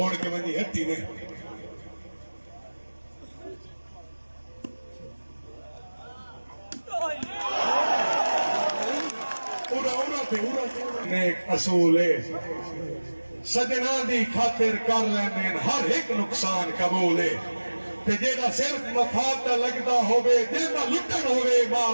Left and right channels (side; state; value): both; inverted; correlation -1.00